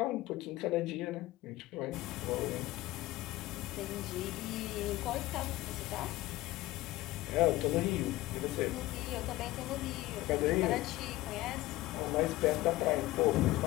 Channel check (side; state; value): right; quieter; 17.8 dB